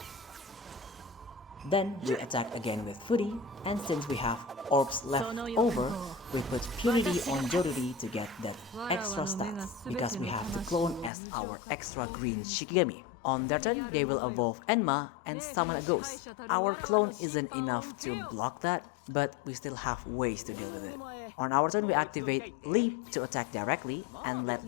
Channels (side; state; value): right; drops out; at 11.1 s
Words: Then we attack again with Fury, and since we have orbs left over, we put Purity on Joruri to get that extra stats, because we have the clone as our extra green Shikigami. On their turn, they will evolve Enma and summon a ghost. Our clone isn't enough to block that, but we still have ways to deal with it. On our turn, we activate Leap to attack directly and let